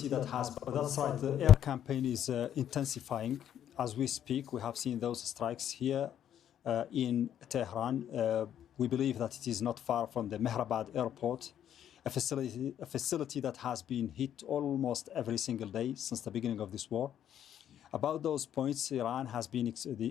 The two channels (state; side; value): quieter; right; 10.1 dB